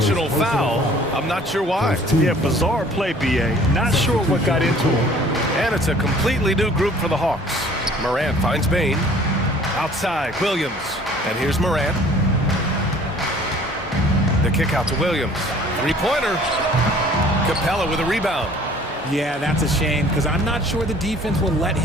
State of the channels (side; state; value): both; normal; correlation 0.53